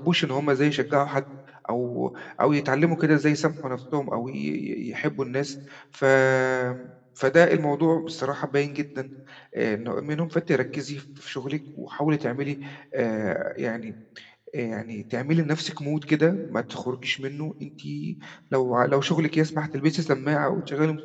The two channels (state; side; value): identical; both; correlation 1.00